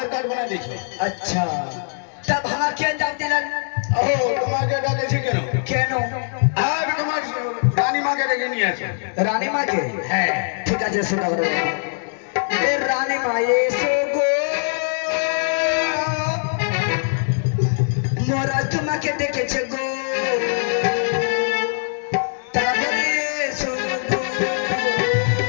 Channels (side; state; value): right; silent; digital silence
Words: কার্ড বানা দিয়েছো। আচ্ছা, তা ভাঙা কে জান দিলেন? ও তোমাকে ডাকেছি কেন? কেন? আর তোমার রানীমাকে ডেকে নিয়ে আসো। রানীমাকে? হ্যাঁ ঠিক আছে, শোনা বলো। এ রানীমা এসো গো, মোরা তোমাকে দেখেছে গো, তারপরে এসো গো।